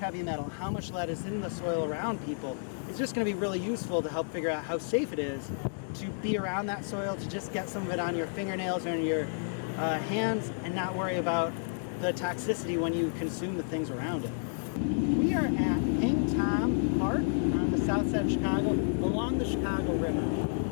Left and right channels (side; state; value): right; silent; digital silence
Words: metal, how much lead is in the soil around people is just going to be really useful to help figure out how safe it is to be around that soil, to just get some of it on your fingernails or on your hands and not worry about the toxicity when you consume the things around it. We are at Hang Tom Park on the south side of Chicago, along the Chicago River.